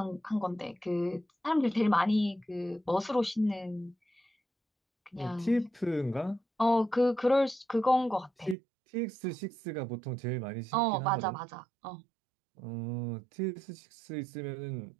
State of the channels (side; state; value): left; drops out; at 8.6 s